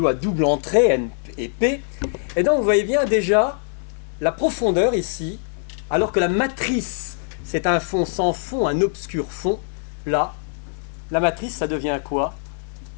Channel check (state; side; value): silent; right; digital silence